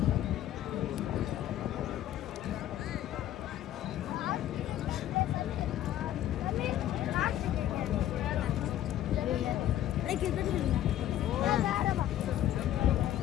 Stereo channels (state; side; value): quieter; right; 12.4 dB